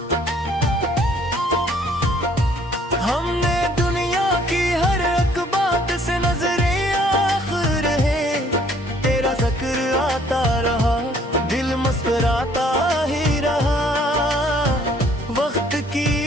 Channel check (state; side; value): normal; both; correlation 0.60